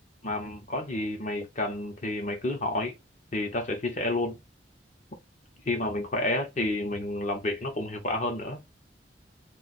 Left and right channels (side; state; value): both; normal; correlation 0.26